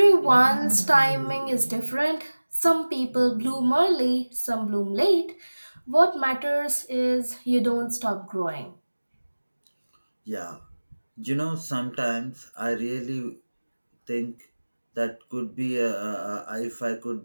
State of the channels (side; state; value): both; inverted; correlation -1.00